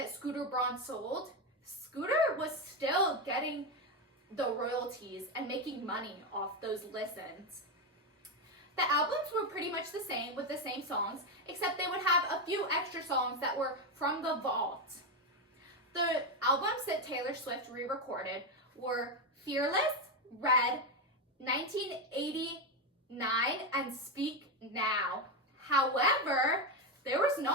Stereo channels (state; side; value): normal; both; correlation 0.10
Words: Scooter Braun sold, Scooter was still getting the royalties and making money off those listens. The albums were pretty much the same with the same songs, except they would have a few extra songs that were from the vault. The albums that Taylor Swift re-recorded were Fearless, Red, 1989, and Speak Now. However, there was